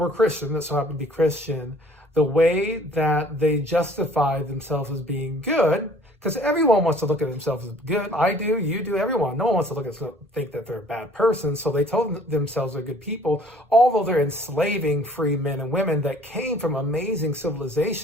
Christian, that so happened to be Christian, the way that they justified themselves as being good, because everyone wants to look at themselves as good. I do, you do, everyone. No one wants to look at think that they're a bad person. So they told themselves they're good people, although they're enslaving free men and women that came from amazing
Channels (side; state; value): both; normal; correlation 0.54